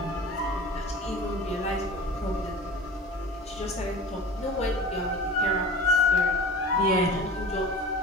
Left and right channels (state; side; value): normal; both; correlation 0.37